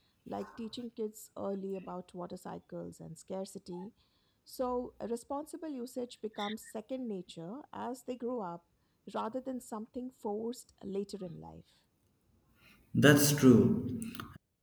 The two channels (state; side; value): identical; both; correlation 1.00